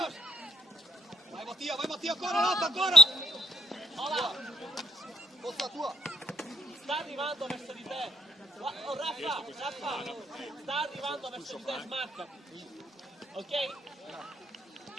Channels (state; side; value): normal; both; correlation 0.60